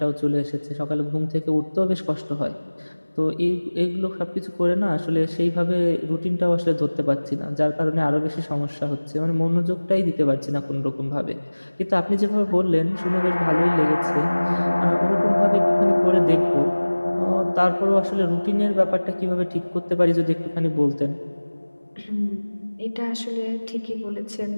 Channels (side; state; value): both; inverted; correlation -1.00